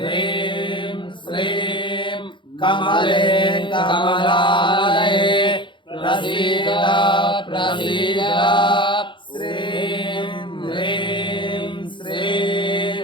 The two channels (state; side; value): late; right; 0.23 ms